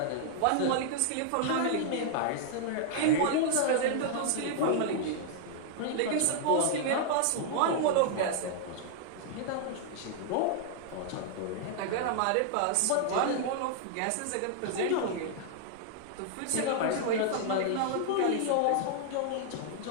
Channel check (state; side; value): different; both; correlation -0.01